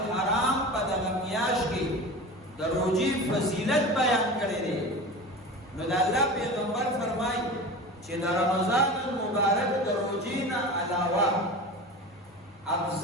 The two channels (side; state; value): both; normal; correlation 0.32